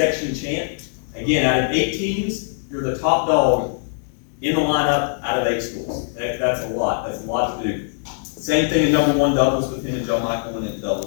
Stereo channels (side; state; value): right; silent; 65 dB below the other